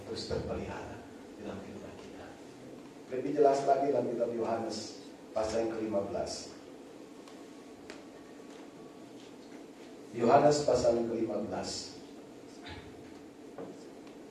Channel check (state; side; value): identical; both; correlation 1.00